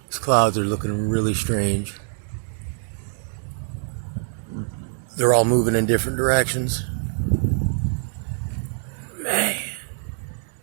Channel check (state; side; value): silent; left; digital silence